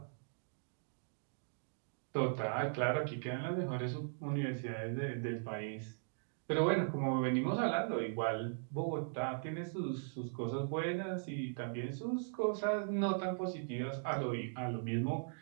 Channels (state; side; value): silent; left; digital silence